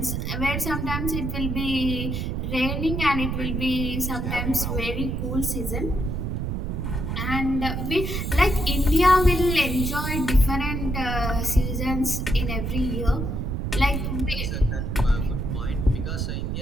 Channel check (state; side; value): noise; right; rumble, 2 dB below the sound